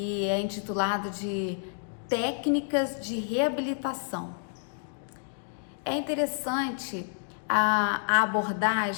é intitulado de Técnicas de Reabilitação. É interessante a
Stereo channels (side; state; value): right; silent; digital silence